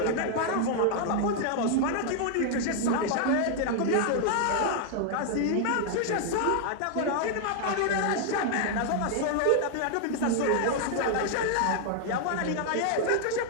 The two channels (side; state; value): both; different; correlation 0.00